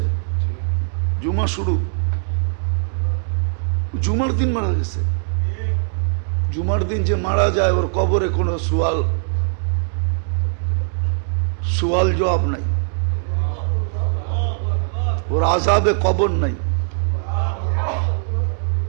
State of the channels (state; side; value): silent; left; digital silence